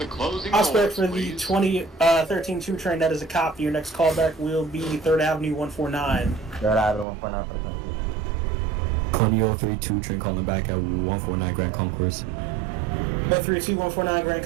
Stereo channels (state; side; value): drops out; left; at 7.1 s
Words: closing doors, Prospect for the please. 2013-2 train, that is a copy. Your next callback will be 3rd Avenue 149. 3rd Avenue 149 for the 20032 train calling back at 149 Grand Concourse. 132 149 Grand